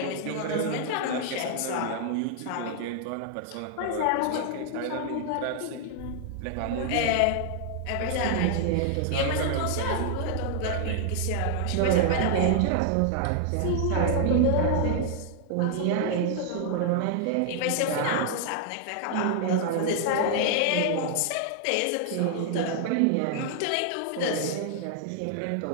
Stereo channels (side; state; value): both; different; correlation 0.00